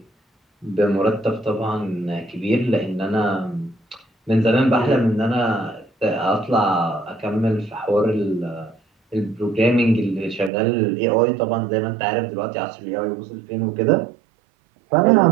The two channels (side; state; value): left; drops out; at 10.5 s